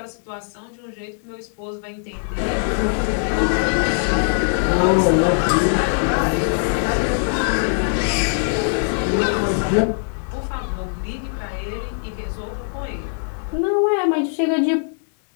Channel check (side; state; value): right; silent; 59 dB below the other